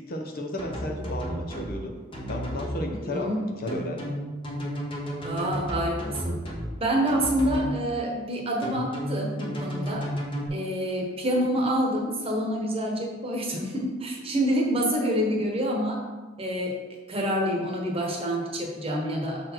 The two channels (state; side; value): normal; both; correlation 0.51